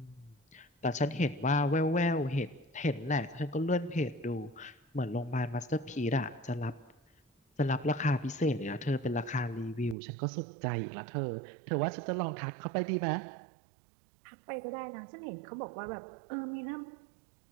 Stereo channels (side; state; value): left; drops out; at 10.0 s